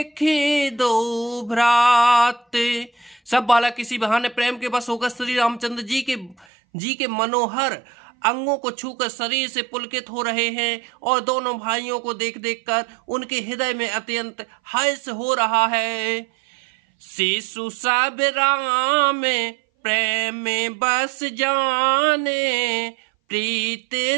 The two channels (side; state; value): left; drops out; at 6.5 s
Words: दो भ्राते। सब बालक किसी बहाने प्रेम के बस होकर श्री रामचंद्र जी के मनोहर अंगों को छूकर शरीर से पुलकित हो रहे हैं और दोनों भाइयों को देख देख कर उनके हृदय में अत्यंत हर्ष हो रहा है। शिशु सब राम प्रेम में बस जाने, प्रीत